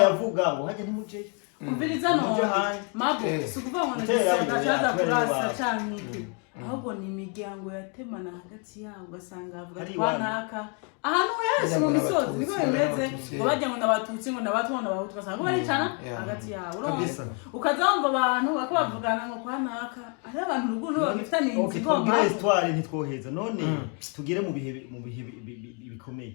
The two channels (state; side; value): quieter; right; 37.4 dB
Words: yavuga ngo hajya ntimuceyo umviriza none mabo sikuvuga ngo ndazaza kurasa cyane iki ahubwo ni imiryango yatemana hagati yabo ugasanga avuga twanaka ahantu hese mu misozi niko bimeze ngo bajya ngo ndabatutsi ngo ndabatwana n'abahutu ugasanga baricana hagati yabo ukazamva abantu bakabavugana ngo kwanaka ari abantu ruguno bagifitanye inzigoma histoire ntitwoheza none tugire mu bihe bikomeye